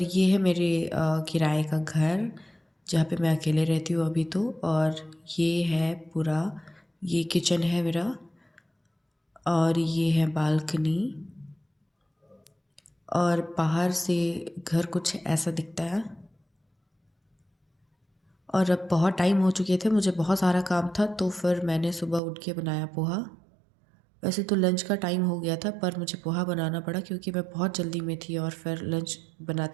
ये है मेरे किराए का घर, जहाँ पे मैं अकेले रहती हूँ अभी तो। और ये है पूरा, ये किचन है मेरा और ये है बालकनी। और बाहर से घर कुछ ऐसा दिखता है। और अब बहुत टाइम हो चुके थे, मुझे बहुत सारा काम था, तो फिर मैंने सुबह उठ के बनाया पोहा। वैसे तो लंच का टाइम हो गया था, पर मुझे पोहा बनाना पड़ा क्योंकि मैं बहुत जल्दी में थी और फिर लंच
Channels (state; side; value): drops out; left; at 22.2 s